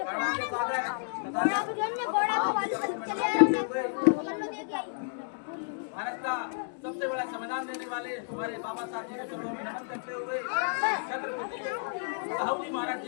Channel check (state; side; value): silent; right; digital silence